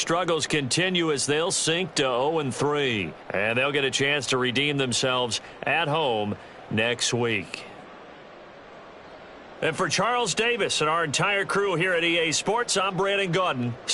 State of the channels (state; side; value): identical; both; correlation 1.00